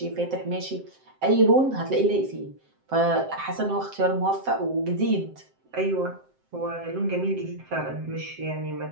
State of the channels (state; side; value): late; left; 7.6 ms